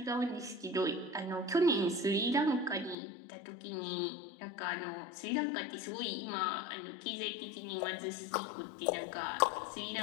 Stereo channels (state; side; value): drops out; right; at 3.0 s